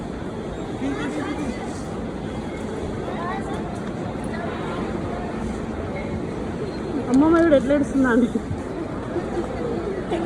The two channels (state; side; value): identical; both; correlation 1.00